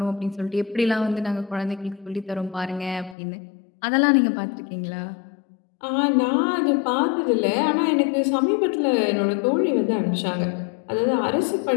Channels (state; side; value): drops out; right; at 3.2 s